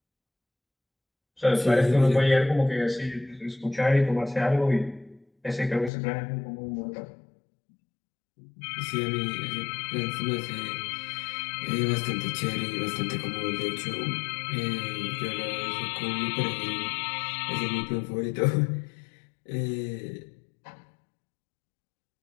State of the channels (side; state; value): right; drops out; at 5.9 s